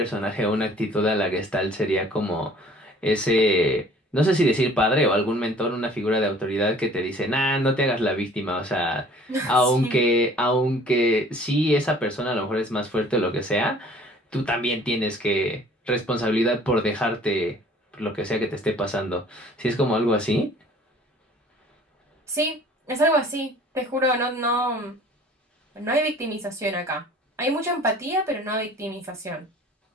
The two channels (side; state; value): both; normal; correlation 0.52